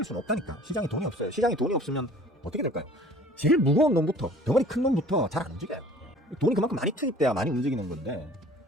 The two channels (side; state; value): both; normal; correlation 0.49